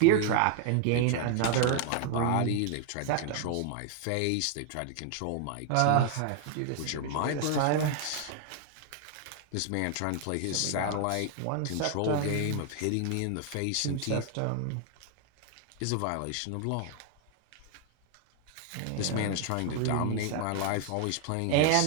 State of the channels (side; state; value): both; different; correlation 0.00